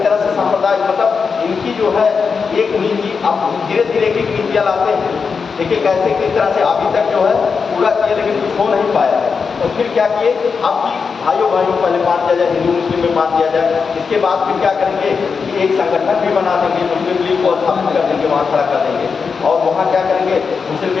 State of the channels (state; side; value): quieter; right; 5.5 dB